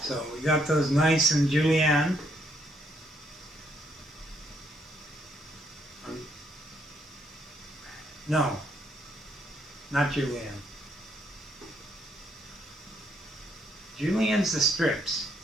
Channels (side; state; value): both; normal; correlation 0.73